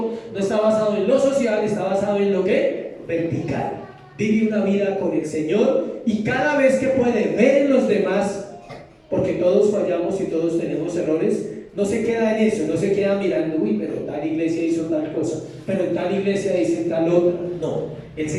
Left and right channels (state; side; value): identical; both; correlation 1.00